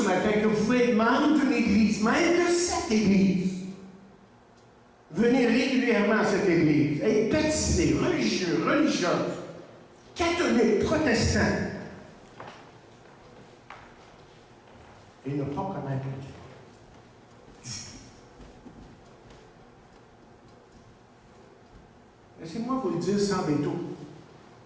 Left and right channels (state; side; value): identical; both; correlation 1.00